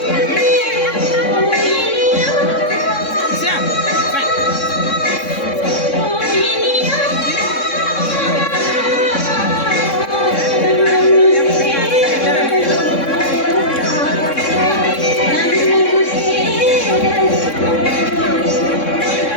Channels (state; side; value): late; right; 3.6 ms